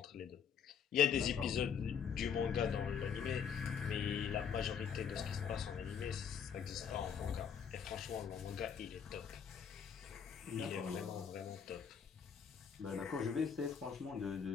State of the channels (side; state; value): right; quieter; 7.3 dB